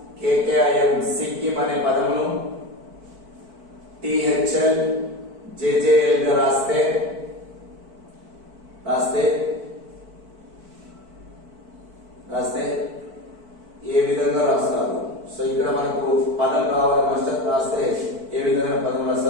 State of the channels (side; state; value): left; late; 4.5 ms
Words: సిక్కిం అనే పదమును THL JJL గా రాస్తే ఏ విధంగా రాస్తారు? సో ఇక్కడ మనకు పదం రావాలి మాస్టర్, రాస్తే ఏ విధంగా పదం